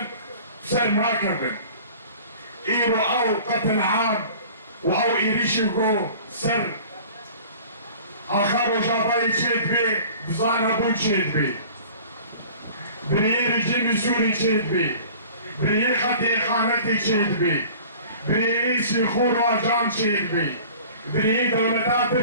سر مراكبن ايرو او قتل عام واو ايريشيغو سر اخر جاباي تشيد بي بزانا بو تشيد بي بريير جيمي سوري تشيد بي بريير خطي خانتي تشيد بي بريير سيخور واجام تشيد بي بريير دولتا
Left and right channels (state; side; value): inverted; both; correlation -0.45